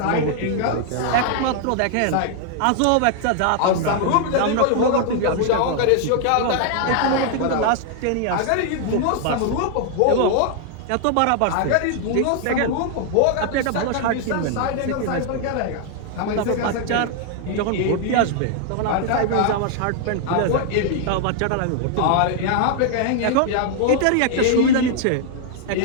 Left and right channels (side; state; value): both; different; correlation 0.00